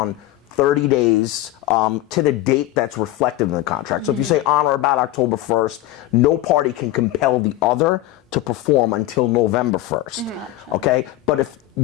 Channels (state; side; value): quieter; right; 15.5 dB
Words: 30 days to the date that's reflected in the contract. So if you say on or about October 1st, no party can compel the other to perform until November 1st. Okay? But if